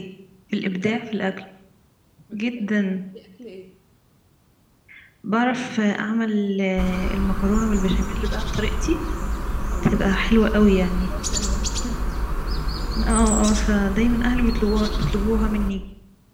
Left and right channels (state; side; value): identical; both; correlation 1.00